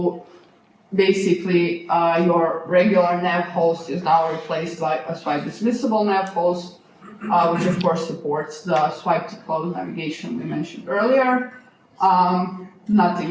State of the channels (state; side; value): identical; both; correlation 1.00